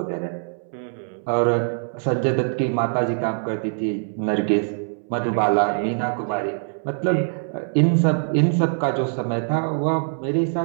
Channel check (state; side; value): silent; left; 63 dB below the other